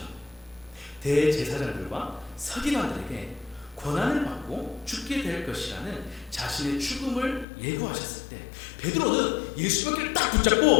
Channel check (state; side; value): drops out; right; at 7.5 s